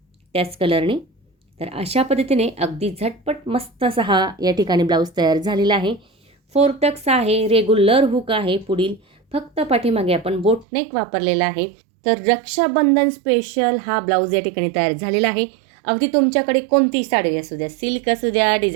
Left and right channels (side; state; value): left; drops out; at 10.7 s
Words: त्याच कलरने. तर अशा पद्धतीने अगदी झटपट मस्त असा हा या ठिकाणी ब्लाऊज तयार झालेला आहे. 4 टक्स आहे, रेग्युलर हुक आहे, पुढील फक्त पाठीमागे आपण बोटनेक वापरलेला आहे. तर रक्षाबंधन स्पेशल हा ब्लाऊज या ठिकाणी तयार झालेला आहे. अगदी तुमच्याकडे कोणतीही साडी असू द्या, सिल्क असू द्या,